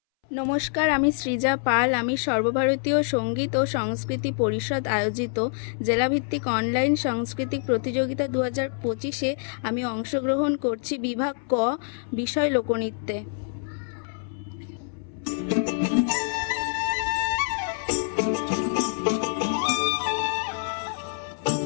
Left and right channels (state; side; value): silent; right; 61 dB below the other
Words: নমস্কার, আমি সৃজা পাল। আমি সর্বভারতীয় সঙ্গীত ও সংস্কৃতি পরিষদ আয়োজিত জেলাভিত্তিক অনলাইন সাংস্কৃতিক প্রতিযোগিতা 2025-এ আমি অংশগ্রহণ করছি বিভাগ ক, বিষয় লোকনৃত্যে।